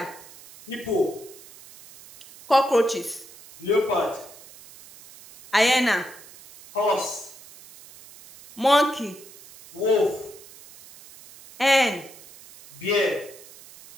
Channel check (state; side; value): noise; right; hiss, 20 dB below the sound